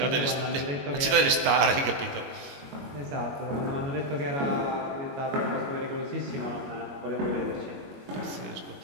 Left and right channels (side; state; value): left; late; 22 ms